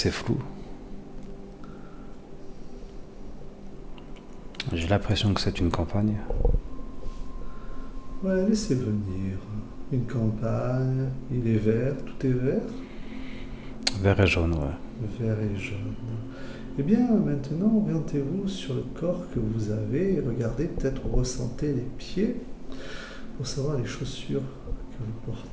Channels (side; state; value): both; identical; correlation 1.00